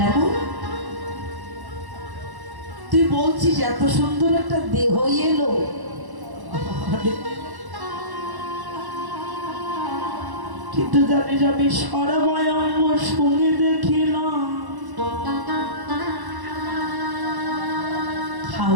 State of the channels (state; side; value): late; left; 1.1 ms